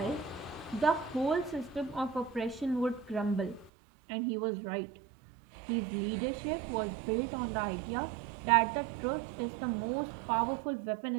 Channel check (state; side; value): drops out; left; at 3.7 s